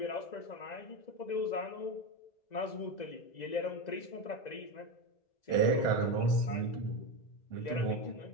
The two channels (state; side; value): late; right; 2.0 ms